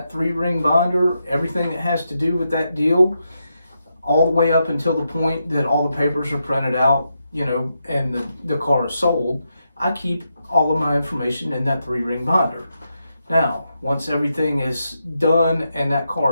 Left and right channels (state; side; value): inverted; both; correlation -0.84